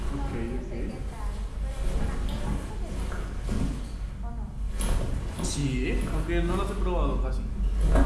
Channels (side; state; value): both; identical; correlation 1.00